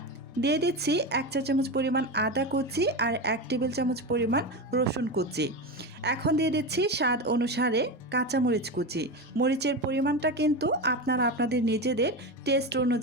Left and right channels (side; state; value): both; normal; correlation 0.20